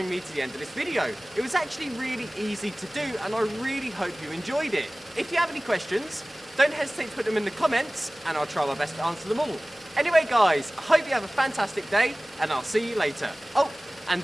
me to the end of this video. It was actually really easy to do, and I really hope you enjoyed it. If you have any questions, don't hesitate to put them in the comments, and I'll try my best to answer them all. Anyway guys, I hope you have a fantastic day, and I'll see you later. Oh, and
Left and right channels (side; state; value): both; normal; correlation 0.98